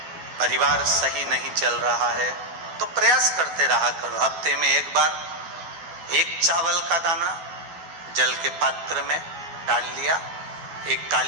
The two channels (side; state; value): left; late; 12 ms